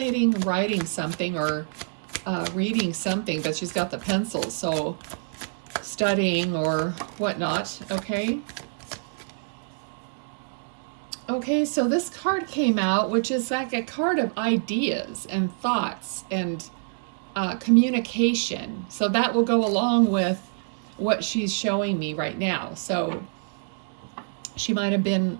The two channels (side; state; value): left; silent; digital silence